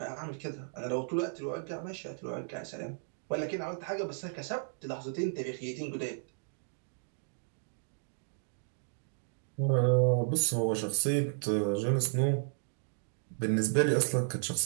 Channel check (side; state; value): left; silent; digital silence